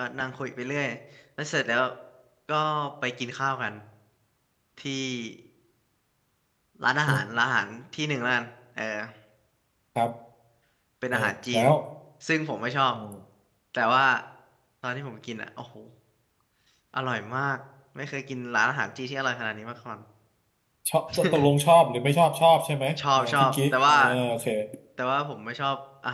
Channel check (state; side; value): identical; both; correlation 1.00